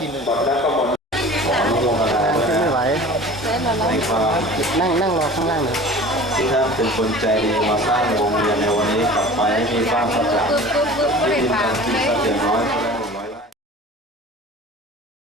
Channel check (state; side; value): normal; both; correlation 0.41